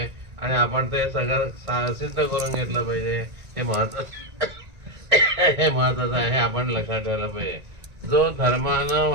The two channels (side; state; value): left; late; 1.9 ms